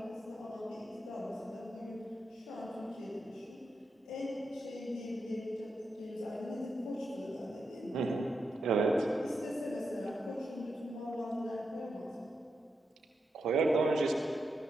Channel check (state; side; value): normal; both; correlation 0.86